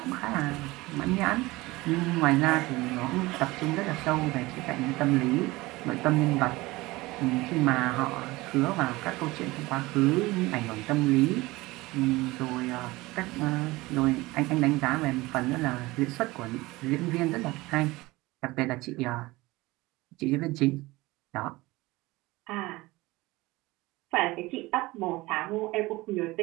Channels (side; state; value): left; quieter; 20.6 dB